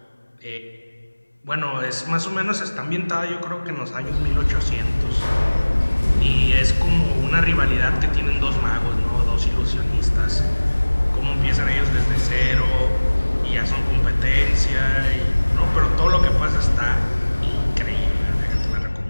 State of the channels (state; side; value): inverted; both; correlation -1.00